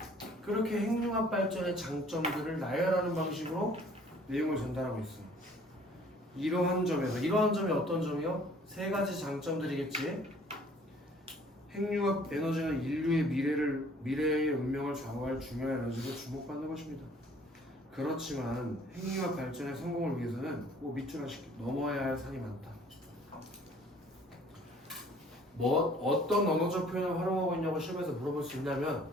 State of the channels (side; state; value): both; normal; correlation 0.55